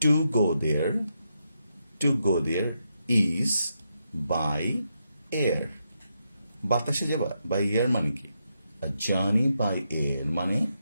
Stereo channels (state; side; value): inverted; both; correlation -0.83